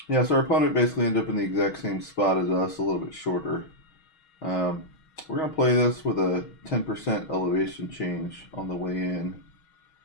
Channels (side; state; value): right; late; 6.3 ms